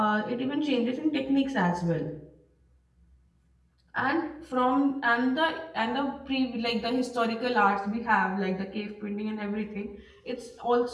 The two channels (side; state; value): both; identical; correlation 1.00